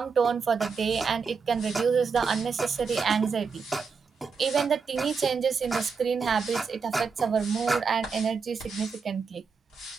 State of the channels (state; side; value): quieter; left; 5.4 dB